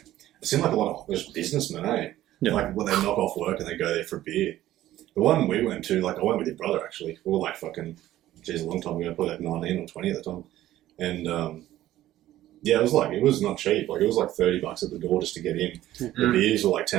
like a lot of just businessmen, eh? Yeah. Like when they knock off work and they go there for a beer. The one we went to, like I went with your brother actually. We were like fucking, geez, a long time ago, probably like 19 or 20 at the time, and yeah, it was not cheap. Like it was like $30 at the door just to get in. The beers were like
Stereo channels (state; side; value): quieter; left; 14.1 dB